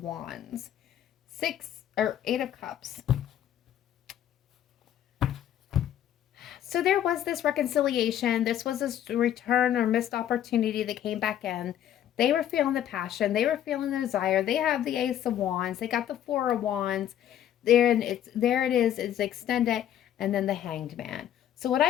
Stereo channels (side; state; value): right; quieter; 10.9 dB